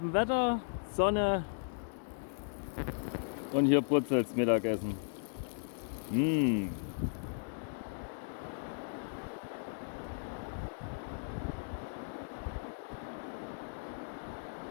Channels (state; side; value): silent; right; digital silence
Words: Wetter, Sonne und hier brutzelt's Mittagessen. Mmh.